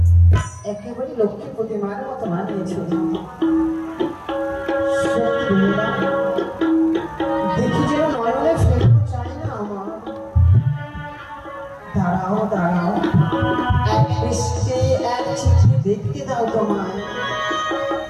একেবারে লক্ষ্মী প্রতিমার মতো মানিয়েছ দেখি যেন নয়নে ফেরত চাই না আমার দাঁড়াও দাঁড়াও এক দৃষ্টে এক চিঠি দেখতে দাও তোমায়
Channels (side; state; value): both; identical; correlation 1.00